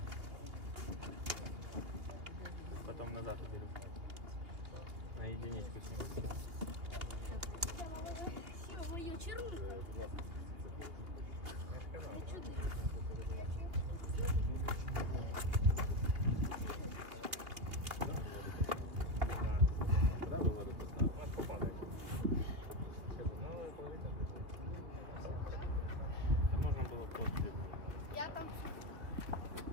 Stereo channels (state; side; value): late; left; 2.8 ms